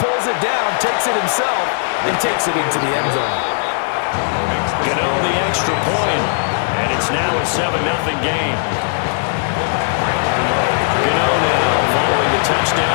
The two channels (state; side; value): silent; right; 68 dB below the other